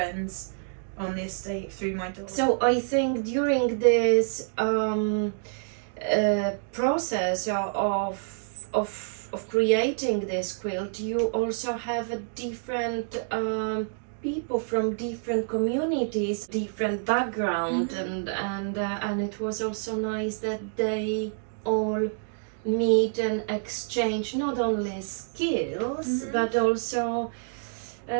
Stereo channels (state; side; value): silent; left; digital silence